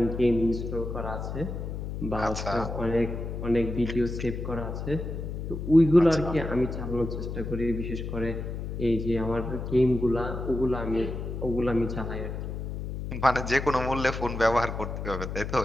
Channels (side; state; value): left; noise; hum, 5 dB below the sound